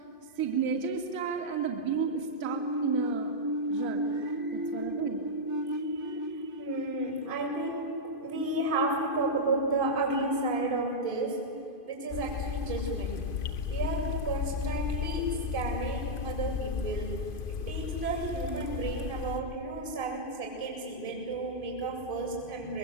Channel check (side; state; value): right; late; 2.5 ms